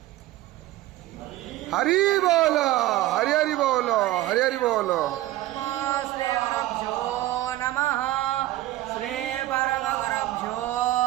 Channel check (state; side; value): quieter; left; 15.9 dB